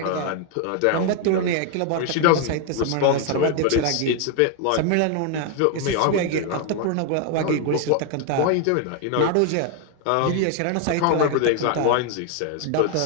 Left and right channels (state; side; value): different; both; correlation 0.01